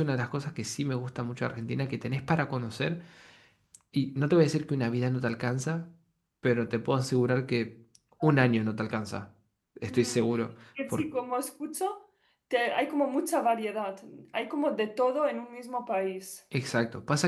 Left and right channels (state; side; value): identical; both; correlation 1.00